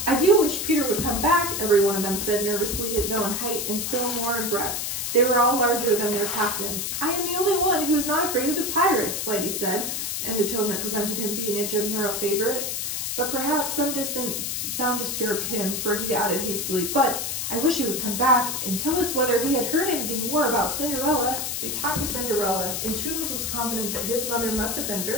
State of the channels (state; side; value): noise; left; hiss, 2 dB below the sound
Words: I do wish Peter would come back, every one of them said nervously, though in height and still more in breadth. They were all larger than their captain. I am the only one who is not afraid of the pirates, Lighty said, in the tone that prevented him being a general favorite. But perhaps some distant sound disturbed him, for he added hastily, but I wish he would come back and tell us whether he had heard anything more about Cinderella. They talked of Cinderella, and Toodles was confident that his mother must have been